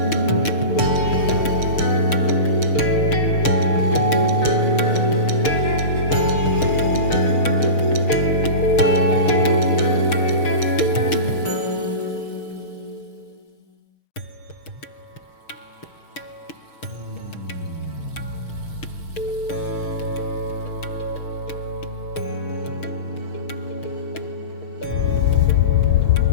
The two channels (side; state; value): right; late; 6.6 ms